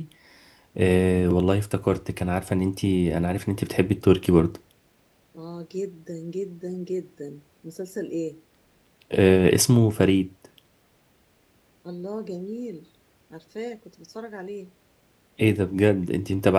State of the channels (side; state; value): both; identical; correlation 1.00